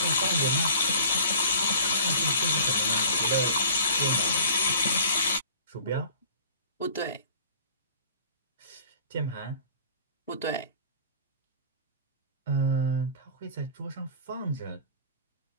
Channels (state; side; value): inverted; both; correlation -0.46